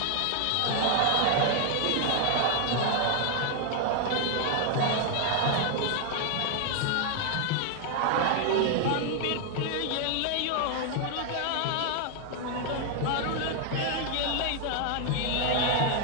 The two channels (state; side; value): different; both; correlation 0.00